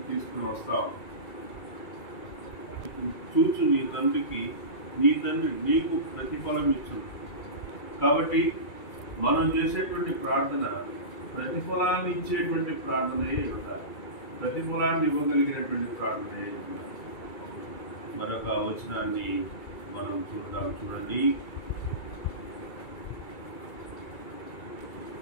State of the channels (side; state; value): right; late; 2.3 ms